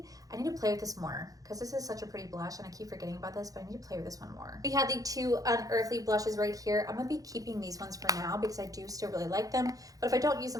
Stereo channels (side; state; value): left; late; 0.17 ms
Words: I need to play with this more because this is such a pretty blush, and I keep forgetting about this, but I need to play with this one more. We have the two Unearthly blushes right here. I'm gonna be keeping these ones for now because I do still really like them, but if I don't use